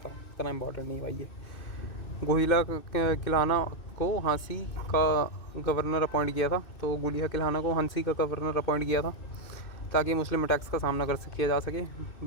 इतना इम्पोर्टेंट नहीं भाई ये। गोहिला किलाना को हांसी का गवर्नर अपॉइंट किया था। तो गोलिया किलाना को हांसी का गवर्नर अपॉइंट किया था ताकि मुस्लिम अटैक्स का सामना किया जा सके।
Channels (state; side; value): late; right; 2.6 ms